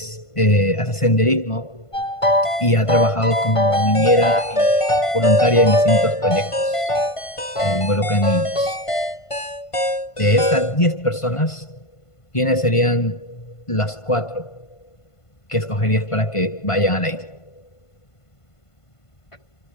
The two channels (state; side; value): late; right; 1.5 ms